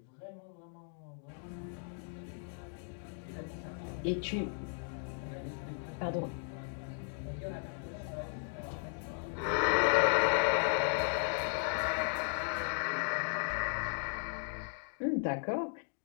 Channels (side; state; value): right; silent; 54 dB below the other